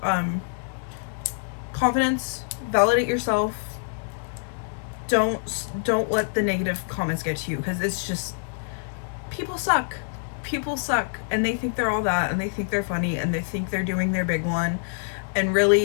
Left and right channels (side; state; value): right; silent; digital silence